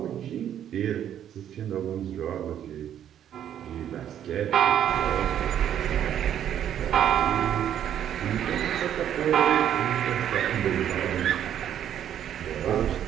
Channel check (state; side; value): quieter; left; 10.2 dB